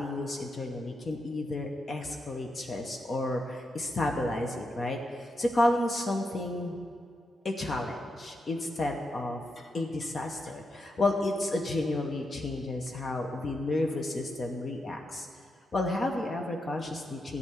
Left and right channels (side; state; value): both; normal; correlation 0.84